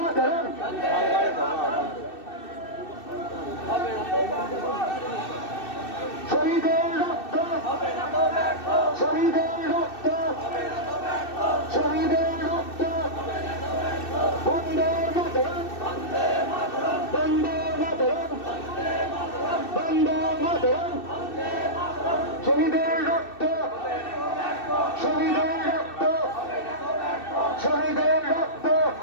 শহীদের রক্ত শহীদের রক্ত শহীদের রক্ত বন্দে মাতরম বন্দে মাতরম বন্দে মাতরম শহীদের রক্ত শহীদের রক্ত শহীদের রক্ত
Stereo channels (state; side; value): late; right; 2.6 ms